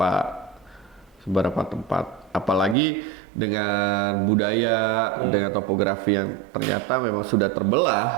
tempat, apalagi dengan budaya dengan topografi yang ternyata memang sudah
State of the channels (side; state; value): left; drops out; at 2.8 s